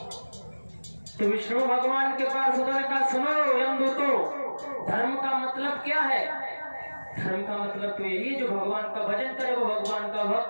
तो विष्णु भगवान के पास उन्होंने कहा सुनो यमदूतों, धर्म का मतलब क्या है? धर्म का मतलब तो यही, जो भगवान का भजन करे वो भगवान का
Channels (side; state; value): both; inverted; correlation -1.00